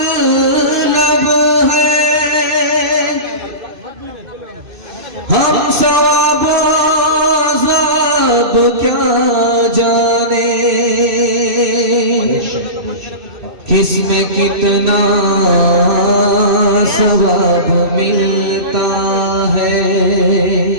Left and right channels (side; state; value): left; late; 2.6 ms